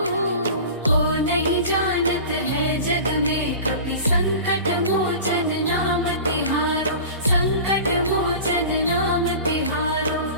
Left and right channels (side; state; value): both; inverted; correlation -0.36